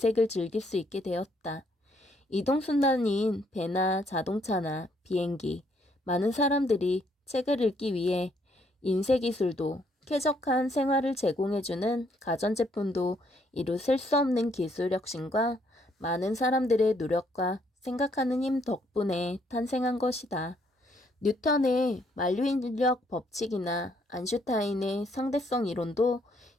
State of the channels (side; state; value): both; normal; correlation 0.69